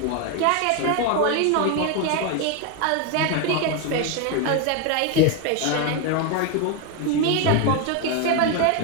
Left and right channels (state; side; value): different; both; correlation 0.01